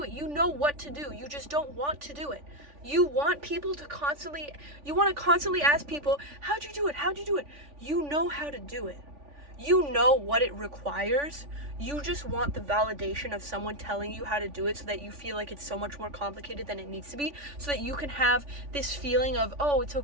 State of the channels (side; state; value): left; late; 3.5 ms